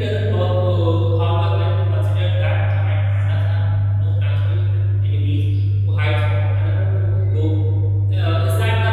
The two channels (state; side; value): identical; both; correlation 1.00